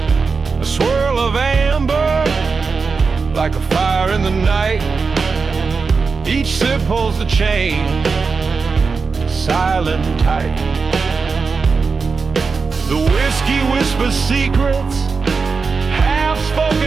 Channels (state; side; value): quieter; left; 4.8 dB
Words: A swirl of amber like a fire in the night. Each sip holds the chain, silent and tight. The whiskey whispers secrets,